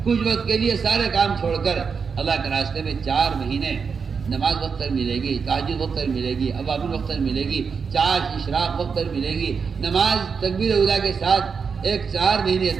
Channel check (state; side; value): quieter; left; 5.8 dB